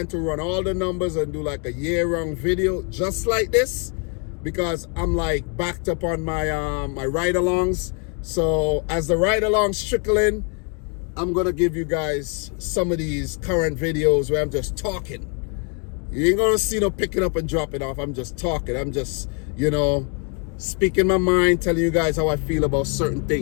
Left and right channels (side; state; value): right; quieter; 38.6 dB